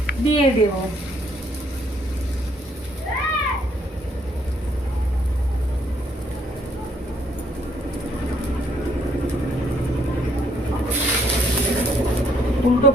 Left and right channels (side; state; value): both; normal; correlation 0.68